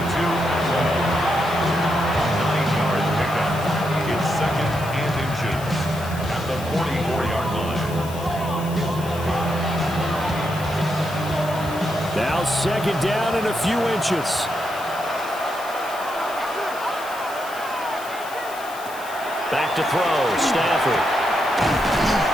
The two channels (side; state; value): left; noise; hiss, 16 dB below the sound